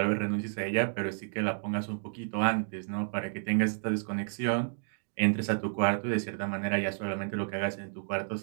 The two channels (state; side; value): silent; left; digital silence